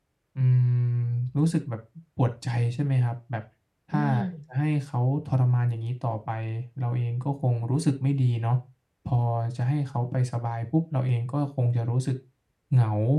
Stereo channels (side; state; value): both; identical; correlation 1.00